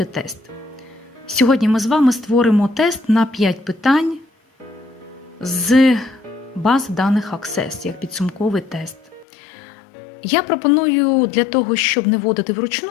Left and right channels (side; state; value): right; drops out; at 9.2 s